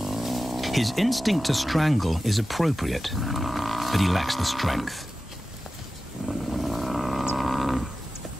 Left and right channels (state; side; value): normal; both; correlation 0.94